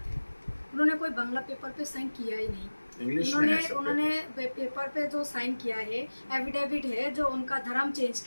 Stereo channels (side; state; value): both; inverted; correlation -1.00